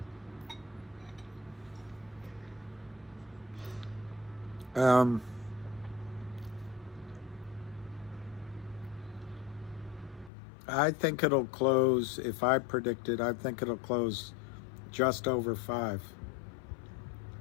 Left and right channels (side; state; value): right; drops out; at 10.3 s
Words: I think it'll close, if I predict it, I think it'll close just over 5.